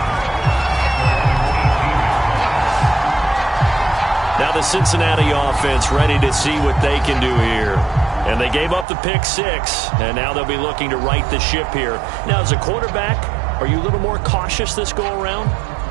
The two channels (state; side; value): drops out; left; at 8.8 s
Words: Now the Cincinnati offense ready to see what they can do here. And they gave up the pick 6, and now they'll be looking to right the ship here. Now, as a quarterback, are you a little more cautious this go-around?